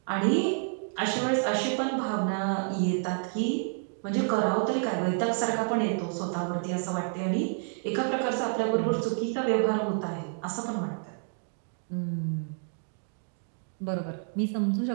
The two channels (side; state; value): left; silent; 58 dB below the other